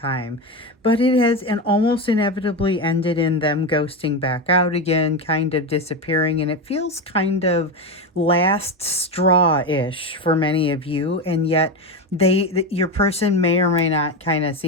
But it has and almost inevitably ended in them ghosting back out again, kind of disappearing. And it feels kind of last straw-ish for many of you. And yet your person may or may not kind of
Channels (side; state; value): both; normal; correlation 0.16